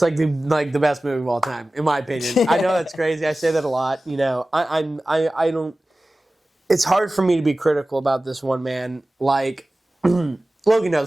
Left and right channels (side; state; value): both; normal; correlation 0.97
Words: like the best movie of all time, in my opinion. I know that's crazy. I say that a lot. I don't. It's hard for me to be critical about this one, man. Like, Logan